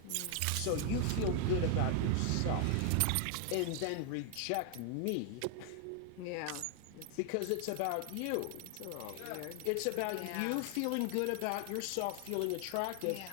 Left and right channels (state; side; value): different; both; correlation 0.00